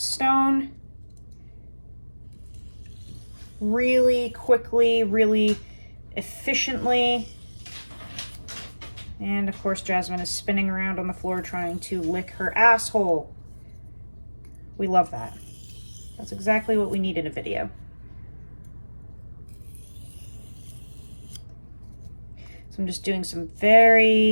Really quickly, really efficiently. And of course, Jasmine is spinning around on the floor trying to lick her asshole. We love that. That's exactly what we need in a video. So I'm just doing some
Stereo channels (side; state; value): both; inverted; correlation -1.00